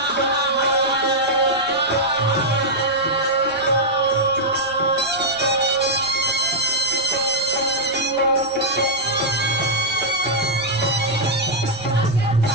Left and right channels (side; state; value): right; noise; rumble, 24 dB below the sound